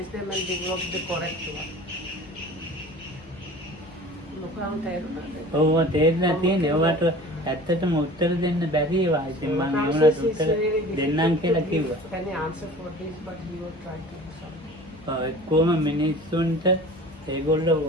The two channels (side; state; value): both; normal; correlation 0.42